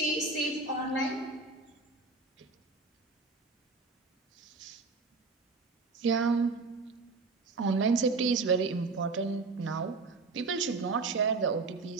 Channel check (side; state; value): left; quieter; 4.0 dB